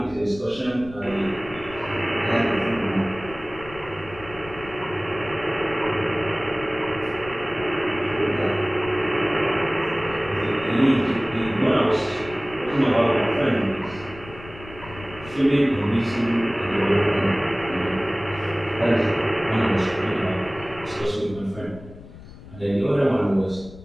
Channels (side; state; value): left; noise; rumble, 17 dB below the sound